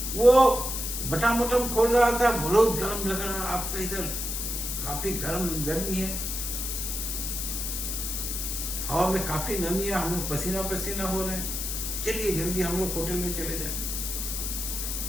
वो बटन बटन खोल रहा था, बहुत गर्म लग रहा, आपका इधर काफी गर्मी है, हवा में काफी नमी है, हम लोग पसीना पसीना हो रहे हैं, चलिए जल्दी हम लोग होटल में चले जाए।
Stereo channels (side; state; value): left; noise; hiss, 3 dB below the sound